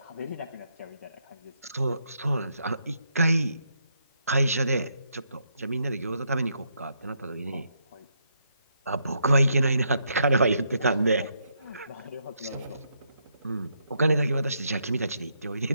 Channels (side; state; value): both; inverted; correlation -0.77